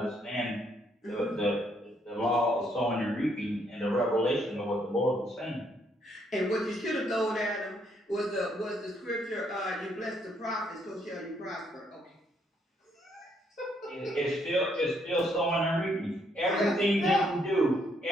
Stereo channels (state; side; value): normal; both; correlation 0.72